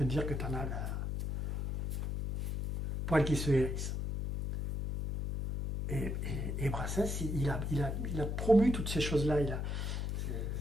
te dire que tu en as le poil qui se hérisse. Et Brassens, il a promu toutes ces choses-là. C'est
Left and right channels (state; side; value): noise; left; hum, 2 dB below the sound